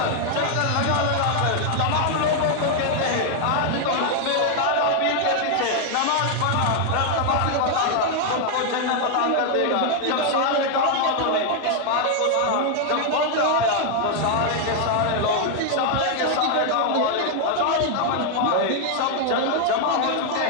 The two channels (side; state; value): both; different; correlation 0.00